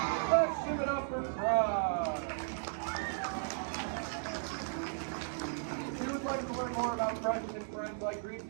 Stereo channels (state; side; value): silent; left; digital silence